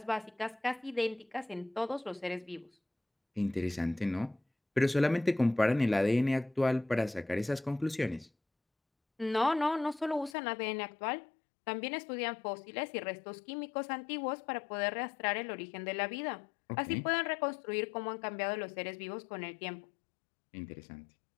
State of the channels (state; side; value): drops out; right; at 10.4 s